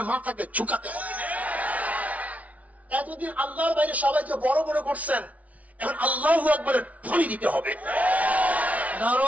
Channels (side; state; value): left; late; 0.069 ms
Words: মাথাকে ঝুঁকাতে হবে। এতদিন আল্লাহর বাইরে সবাইকে বড় বড় করছেন, এখন আল্লাহু আকবারের ধ্বনি দিতে হবে।